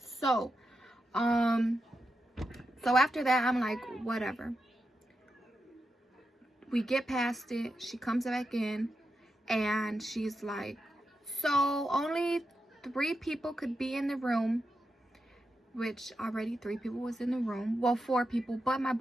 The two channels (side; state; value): both; normal; correlation 0.88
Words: after that, I'm like, whatever. We get past it. She comes back in and she's like, so only 3 people could be in the room, which already 3 people was in the room. Well, 4 people, but my